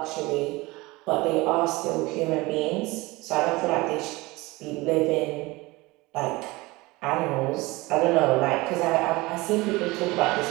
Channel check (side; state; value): left; quieter; 22.0 dB